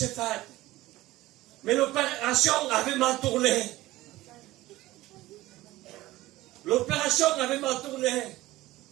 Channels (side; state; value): left; quieter; 17.4 dB